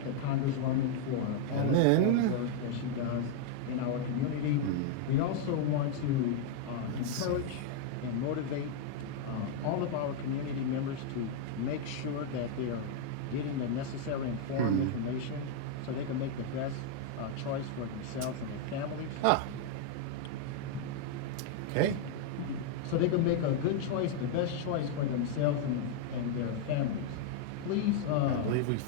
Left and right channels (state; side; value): different; both; correlation 0.00